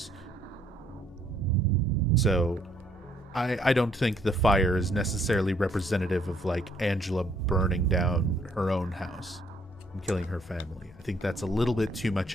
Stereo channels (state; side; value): normal; both; correlation 0.66